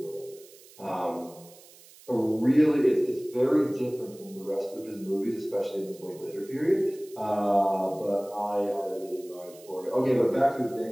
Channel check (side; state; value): right; noise; hiss, 23 dB below the sound